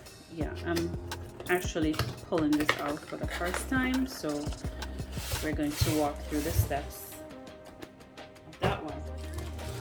yeah, I'm actually pulling this out for the first time, so we're going to walk through the steps of that one.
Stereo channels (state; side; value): identical; both; correlation 1.00